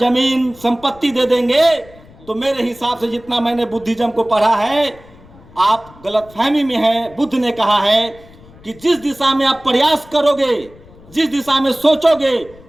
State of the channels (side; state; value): left; noise; rumble, 23 dB below the sound